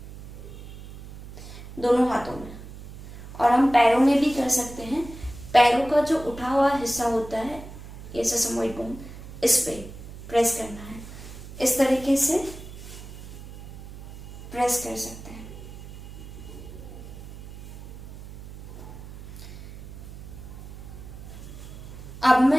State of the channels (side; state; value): right; noise; hum, 13 dB below the sound